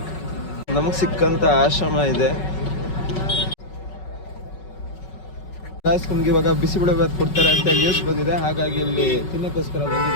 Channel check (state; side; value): late; right; 5.4 ms